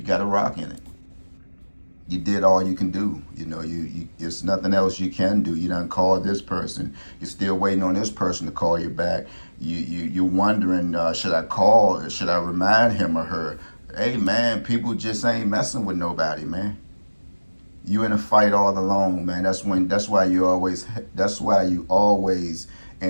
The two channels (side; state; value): both; inverted; correlation -1.00